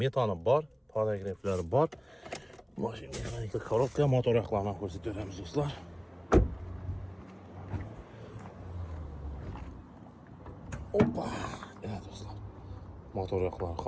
bor, paragraflari bor. Mashina mexanika korobka, motor yoqlarini ko'rsatib beramiz do'stlar. Hoppa. Evet do'stlar. Motor yoqlari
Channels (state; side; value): identical; both; correlation 1.00